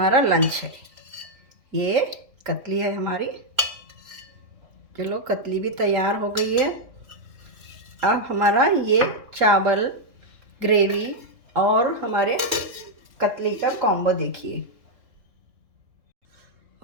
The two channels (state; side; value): late; left; 3.3 ms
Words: लंच है। ये कतली है हमारी। चलो कतली भी तैयार हो गई है। अब हमारा ये चावल, ग्रेवी और हमारे कतली का कॉम्बो देखिए।